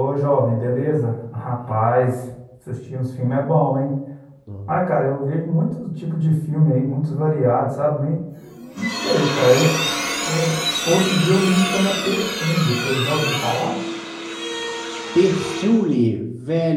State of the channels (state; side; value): identical; both; correlation 1.00